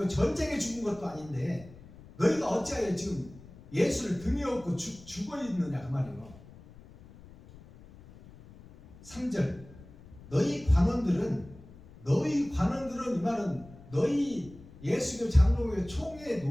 전쟁에 죽은 것도 아닌데 너희가 어찌하여 지금 예수를 등에 업고 죽어있느냐 그 말이에요. 3절 너희 관원들은 이 말은 너희 예수교 장로교 총회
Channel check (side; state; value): left; noise; rumble, 20 dB below the sound